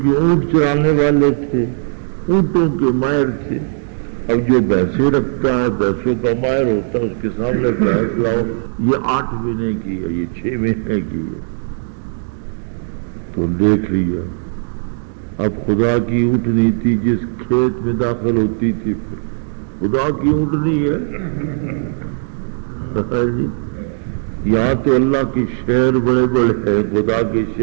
اونٹ چرانے والے تھے، اونٹوں کے ماہر تھے۔ اب جو بھینسیں رکھتا ہے، بھینسوں کا ماہر ہوتا ہے، اس کے سامنے بھینس لاؤ، یہ 8 مہینے کی ہے، یہ 6 مہینے کی ہے، تو دیکھ لیا۔ اب خدا کی اونٹنی تھی، جس کھیت میں داخل ہوتی تھی خدا کی اونٹنی ہے۔ یہاں تو اللہ کے شہر بڑے بڑے ہیں، خدا کے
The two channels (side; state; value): left; silent; digital silence